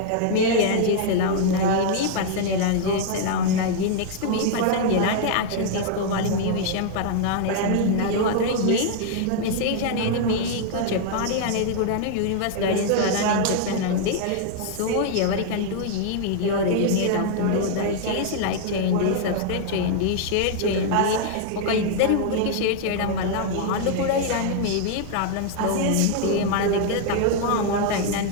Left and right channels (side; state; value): both; different; correlation 0.00